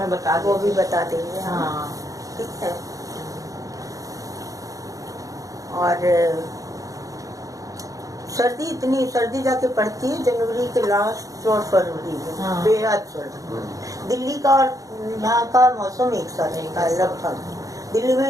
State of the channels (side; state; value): left; late; 0.17 ms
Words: बता वो दीजिए। भी बता देंगे। हाँ ठीक है। और सर्दी जाके पड़ती है जनवरी के लास्ट और फरवरी में। हाँ। बेहद सर्दी। दिल्ली का और यहाँ का मौसम एक साथ का लगभग। दिल्ली